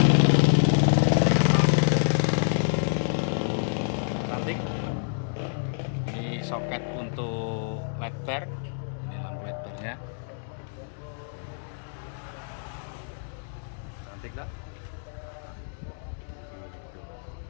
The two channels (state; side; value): silent; right; digital silence